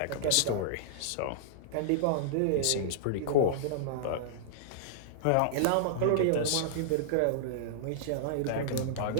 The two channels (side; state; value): both; different; correlation -0.02